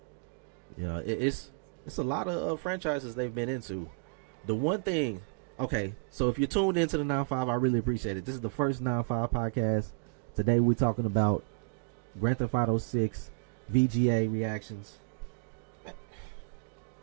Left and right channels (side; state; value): left; quieter; 37.1 dB